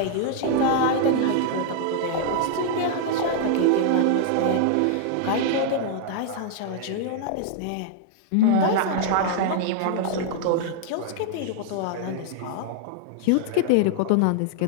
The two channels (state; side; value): different; both; correlation -0.01